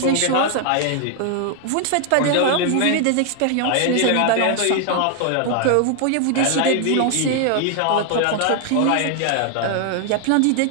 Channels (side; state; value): both; different; correlation 0.00